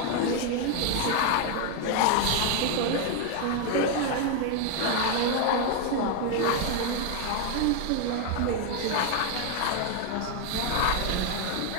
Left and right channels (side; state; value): both; different; correlation 0.01